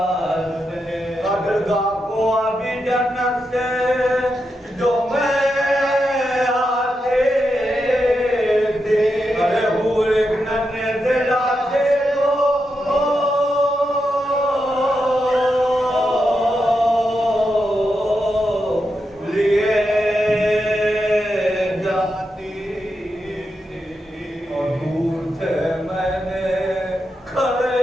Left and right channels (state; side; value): normal; both; correlation 0.86